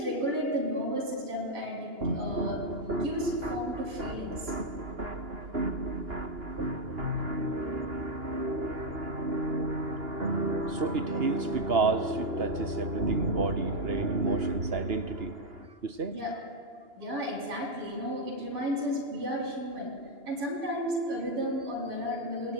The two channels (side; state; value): left; late; 2.9 ms